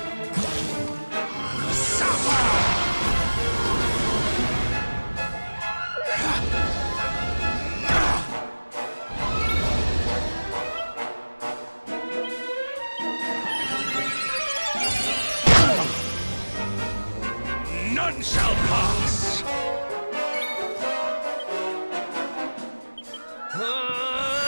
None shall pass!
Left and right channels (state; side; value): inverted; both; correlation -1.00